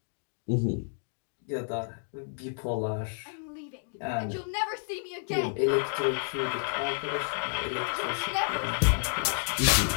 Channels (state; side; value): silent; right; digital silence